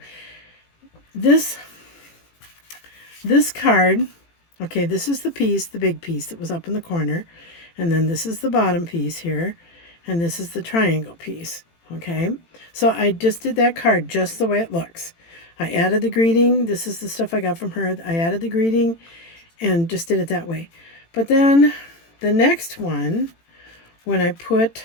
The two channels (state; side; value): late; right; 18 ms